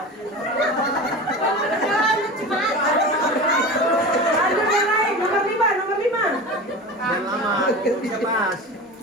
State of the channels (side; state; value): both; normal; correlation 0.31